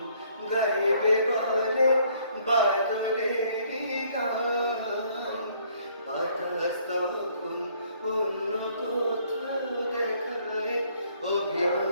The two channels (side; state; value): both; inverted; correlation -0.63